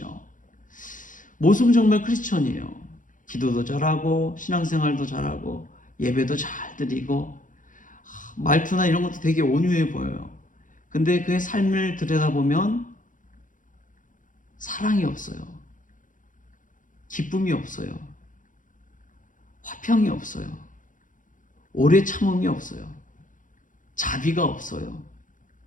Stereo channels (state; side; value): late; right; 0.38 ms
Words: 모습은 정말 크리스천이에요. 기도도 잘하고 신앙생활도 잘하고 예배도 잘 드리고 말투나 이런 것도 되게 온유해 보여요. 근데 그의 삶을 들여다보면 사랑이 없어요. 기쁨이 없어요. 화평이 없어요. 오래 참음이 없어요. 자비가 없어요.